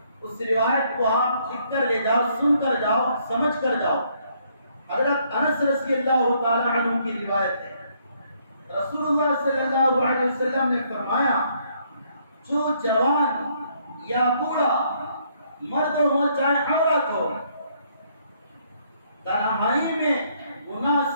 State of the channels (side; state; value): both; inverted; correlation -0.69